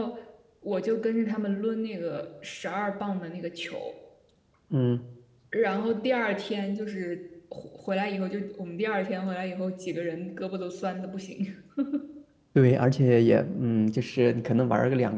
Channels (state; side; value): identical; both; correlation 1.00